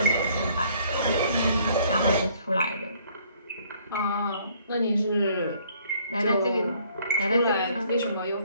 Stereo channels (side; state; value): both; inverted; correlation -0.61